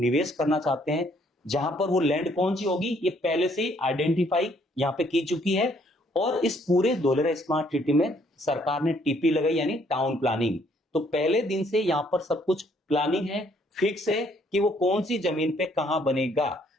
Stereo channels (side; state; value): both; normal; correlation 0.66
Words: करना चाहते हैं, जहां पर वो लैंड कौन सी होगी ये पहले से आइडेंटिफाई यहाँ पे की चुकी है। और इस पूरे धोलेरा स्मार्ट सिटी में सरकार ने टीपी लगाई यानी टाउन प्लानिंग। तो पहले दिन से यहां पर सब कुछ प्लानिंग है, फिक्स है कि वो कौन सी जमीन पे कहां बनेगा।